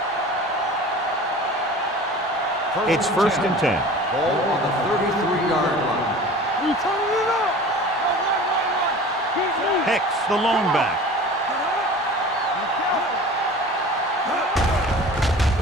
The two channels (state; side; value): normal; both; correlation 0.40